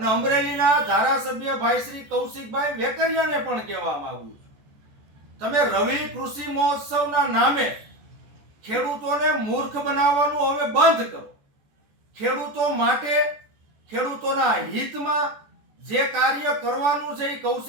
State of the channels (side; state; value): left; late; 14 ms